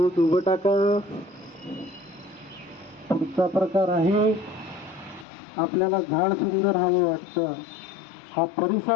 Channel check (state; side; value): drops out; right; at 5.2 s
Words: उभं टाका. पुढचा प्रकार आहे, आपल्याला झाड सुंदर हवं वाटतं, हा